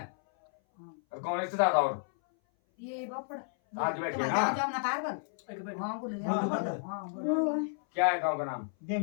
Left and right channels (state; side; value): silent; right; 56 dB below the other